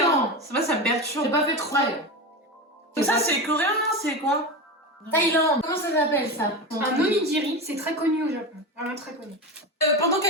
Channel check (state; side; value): normal; both; correlation 0.22